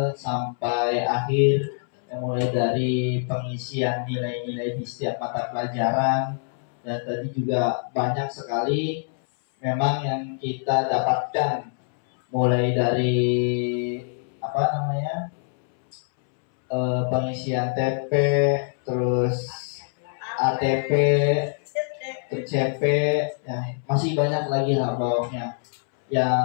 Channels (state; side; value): silent; right; 62 dB below the other